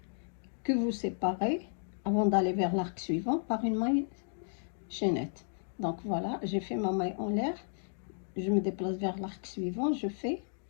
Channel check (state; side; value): silent; right; digital silence